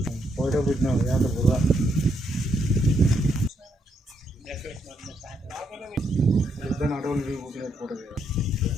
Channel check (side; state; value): both; normal; correlation 0.76